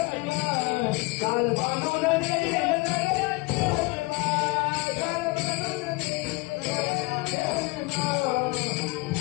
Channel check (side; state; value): right; quieter; 24.8 dB